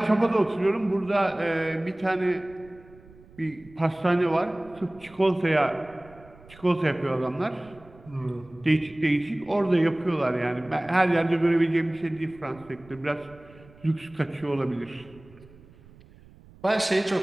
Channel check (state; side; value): noise; right; rumble, 24 dB below the sound